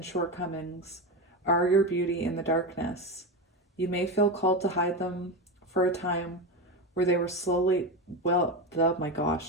shortcomings are your beauty in the darkness. You may feel called to hide them for a time where they were slowly, where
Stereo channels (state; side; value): normal; both; correlation 0.17